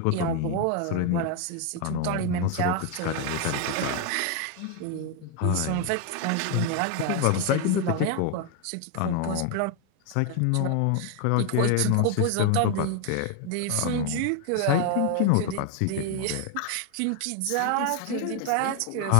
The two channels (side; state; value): both; different; correlation 0.01